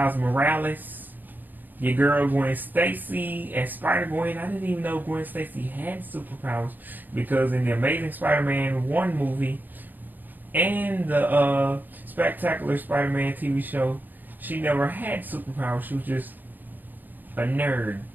Morales, your girl Gwen Stacy, and Spider-Gwen. I didn't even know Gwen Stacy had superpowers, because in the Amazing Spider-Man 1 movie and the Spectacular Spider-Man TV show, she never had superpowers. She was just a nerd.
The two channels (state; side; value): late; left; 0.087 ms